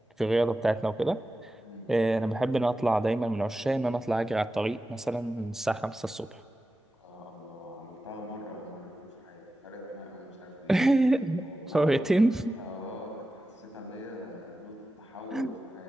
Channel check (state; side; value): normal; both; correlation 0.93